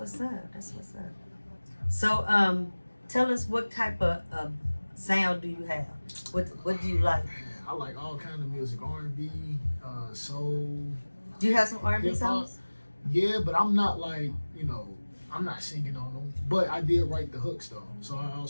up. That's what's up. So, tell us what type of sound do you have? What do you like? I like all kind of music, R&B, soul. Do you have some R&B songs? Yeah, but I'm not like, I'm not singing on them. But I did write the hooks though, so I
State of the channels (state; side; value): inverted; both; correlation -1.00